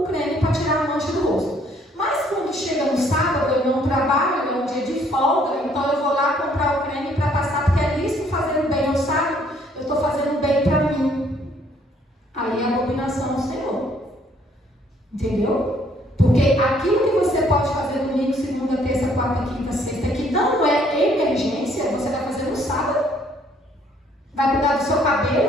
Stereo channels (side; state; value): both; normal; correlation 0.64